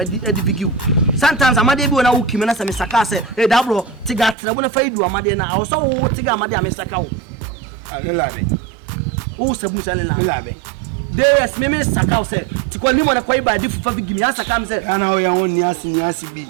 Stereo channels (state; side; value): drops out; left; at 4.4 s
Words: bigi sometimes amade bi na uki me na se me saka se da bro tiga trebo na faidu amade na awo so wo tiga amade a me sakaw alelabe o sabu se alelabe DS me sakaw se tikoli mo na kwai ba di fufa bigi me asaka me se ana o ya won ni asi bi